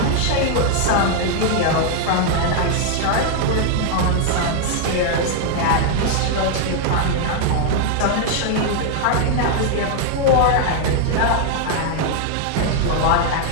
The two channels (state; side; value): different; both; correlation 0.00